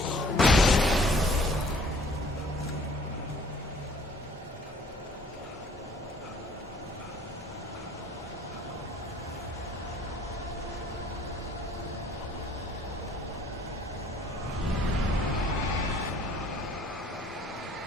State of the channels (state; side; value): normal; both; correlation 0.56